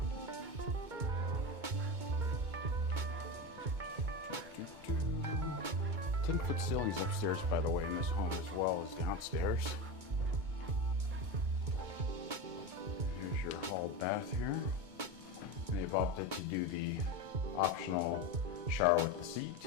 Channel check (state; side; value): late; left; 2.2 ms